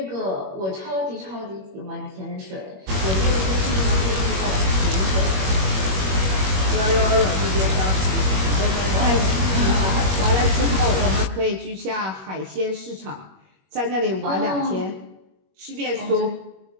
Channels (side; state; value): left; late; 21 ms